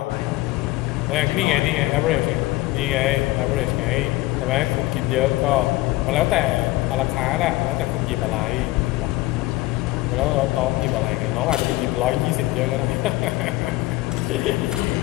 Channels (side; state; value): right; quieter; 18.9 dB